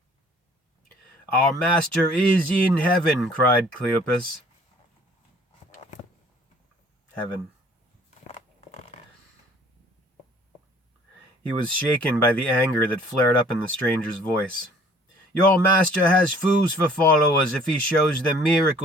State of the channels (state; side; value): normal; both; correlation 0.54